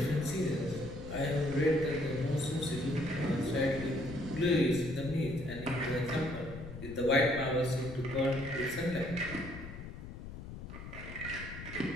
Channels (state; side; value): noise; left; rumble, 11 dB below the sound